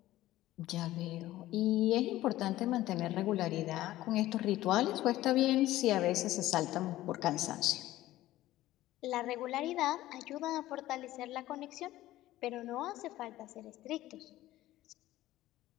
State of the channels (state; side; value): quieter; right; 15.5 dB